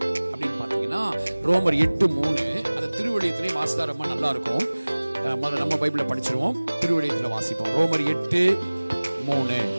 அப்படின்னு பாத்தீங்கன்னா ரோமர் 8:3. அதை திருவழியத்திலே வாசித்தா ரொம்ப நல்லா இருக்கும். முதல்ல நம்ம பைபிளை படிச்சிருவோம், திருவழியத்தில் வாசிப்போம். ரோமர் 8:3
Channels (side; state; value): both; inverted; correlation -1.00